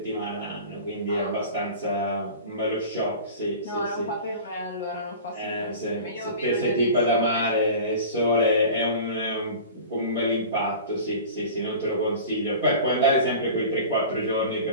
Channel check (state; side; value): inverted; both; correlation -0.37